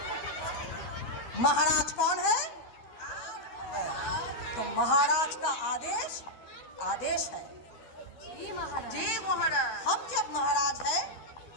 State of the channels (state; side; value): late; right; 12 ms